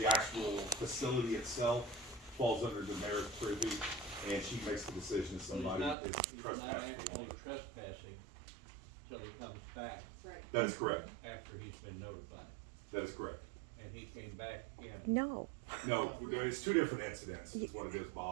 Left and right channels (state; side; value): drops out; left; at 6.0 s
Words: actual facility itself falls under the mayor's purview, and she makes the decision if somebody is He's not trespassing. actually trespassing till he comes back Right. That is correct. after he's been notified, That is correct. and he came back in. No, No, it's two different incidents, is what it is,